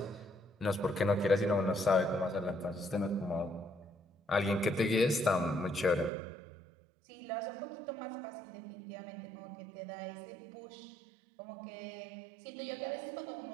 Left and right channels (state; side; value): drops out; left; at 6.1 s